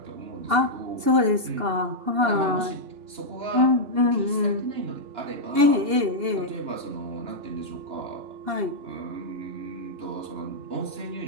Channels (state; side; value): late; left; 2.8 ms